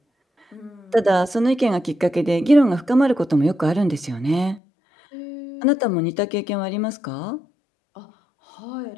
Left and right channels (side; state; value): right; drops out; at 4.6 s